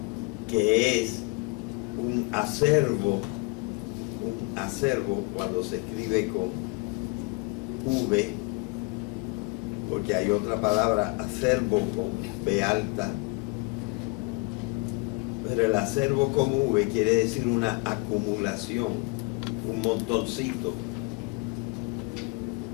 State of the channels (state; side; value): quieter; right; 28.3 dB